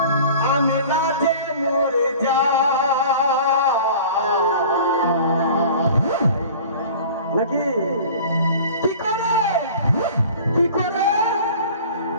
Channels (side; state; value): both; inverted; correlation -0.43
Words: আমি লাজে মরে যাই নাকি। কি করে কি করে